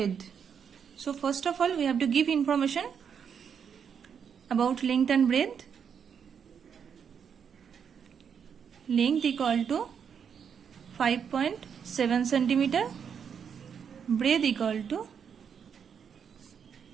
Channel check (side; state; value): left; quieter; 7.3 dB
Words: So first of all we have to give information about length and breadth. Length equal to 5.7 centimeter, breadth equal to